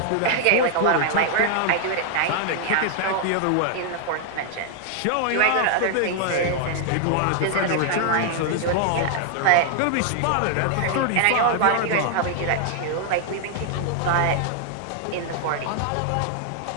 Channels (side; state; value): both; different; correlation 0.00